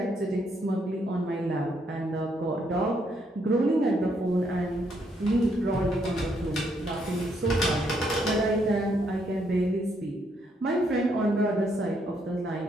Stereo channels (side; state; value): both; normal; correlation 0.74